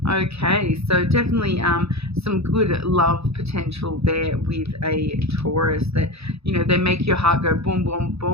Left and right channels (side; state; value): left; late; 0.78 ms